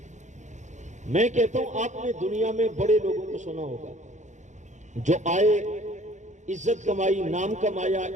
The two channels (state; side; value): late; left; 0.35 ms